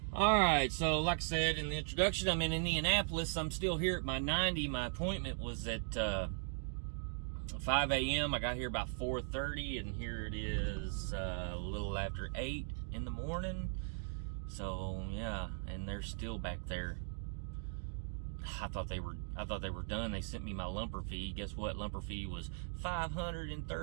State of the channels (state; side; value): silent; left; digital silence